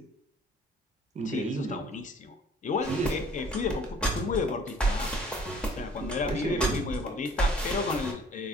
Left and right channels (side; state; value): both; normal; correlation 0.54